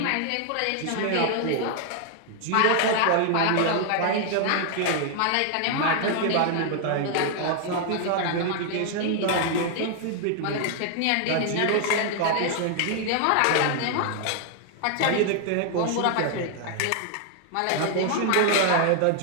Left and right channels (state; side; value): different; both; correlation 0.00